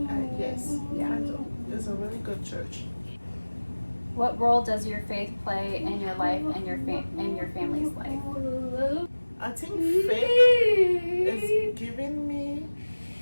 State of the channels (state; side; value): inverted; both; correlation -1.00